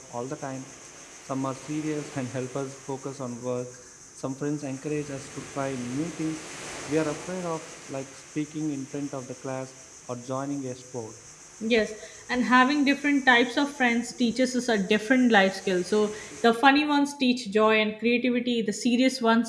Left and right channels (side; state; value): both; identical; correlation 1.00